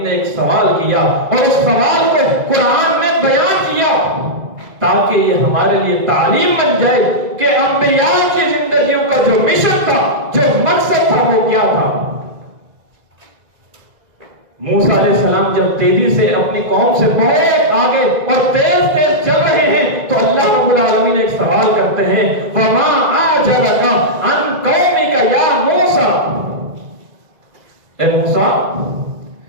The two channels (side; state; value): left; late; 2.0 ms